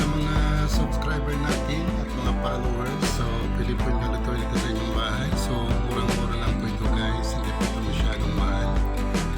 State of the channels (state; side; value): identical; both; correlation 1.00